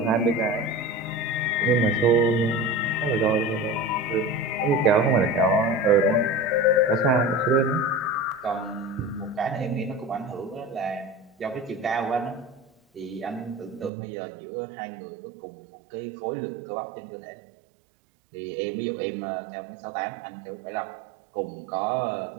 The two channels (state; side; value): drops out; left; at 13.9 s